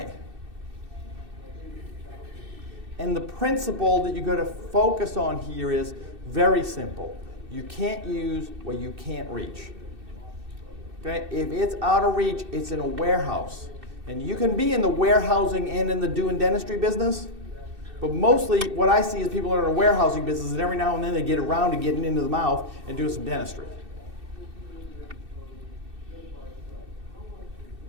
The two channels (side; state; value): left; late; 2.6 ms